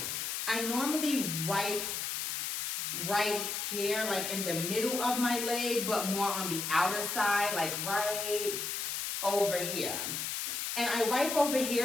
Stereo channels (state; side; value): noise; left; hiss, 2 dB below the sound